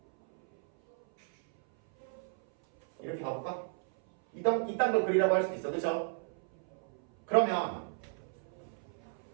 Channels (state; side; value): silent; left; 56 dB below the other